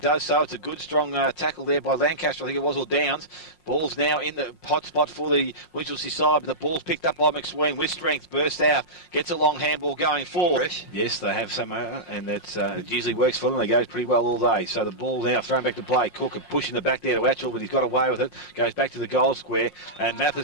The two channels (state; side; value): late; right; 5.6 ms